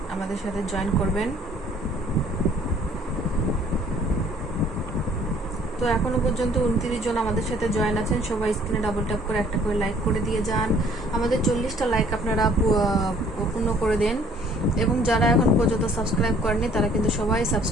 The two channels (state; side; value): normal; both; correlation 0.58